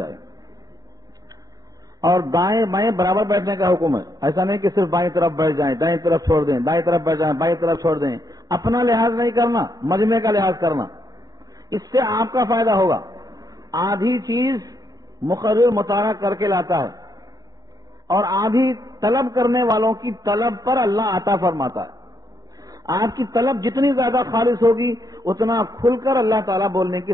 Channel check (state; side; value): late; left; 0.18 ms